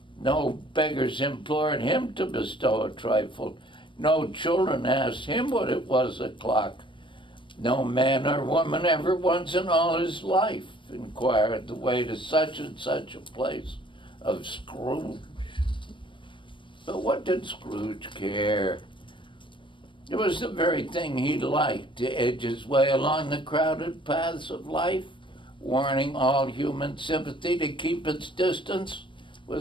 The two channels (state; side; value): late; right; 0.24 ms